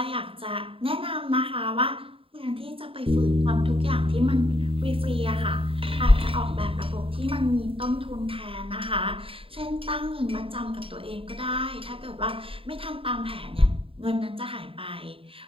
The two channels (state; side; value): late; left; 0.27 ms